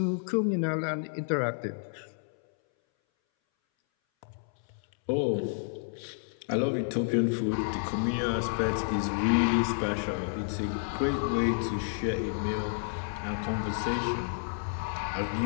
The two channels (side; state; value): right; silent; 58 dB below the other